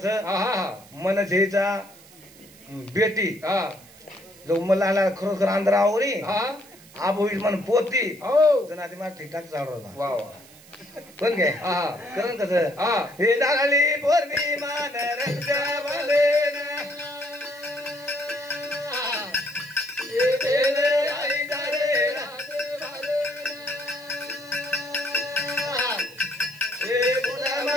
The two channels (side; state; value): right; noise; hiss, 23 dB below the sound